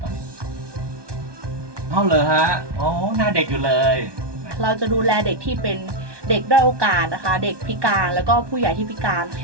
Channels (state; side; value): late; left; 1.2 ms